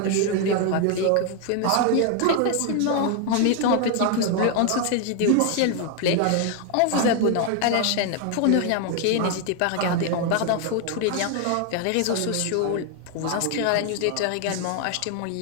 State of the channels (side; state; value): both; different; correlation 0.00